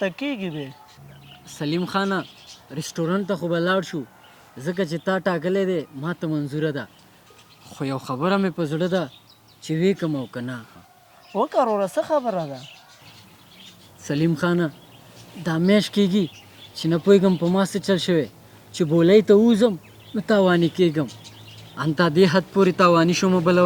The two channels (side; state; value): both; identical; correlation 1.00